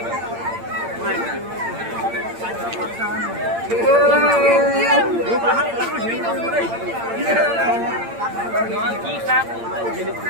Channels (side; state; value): left; late; 8.8 ms